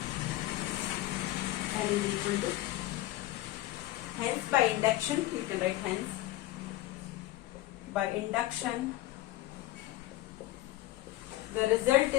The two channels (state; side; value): quieter; right; 16.1 dB